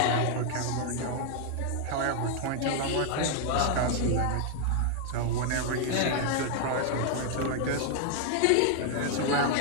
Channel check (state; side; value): different; both; correlation 0.00